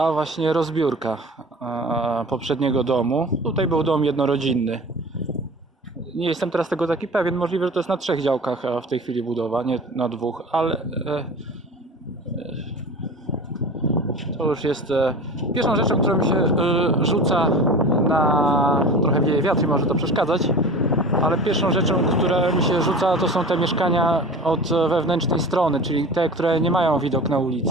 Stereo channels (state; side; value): normal; both; correlation 0.37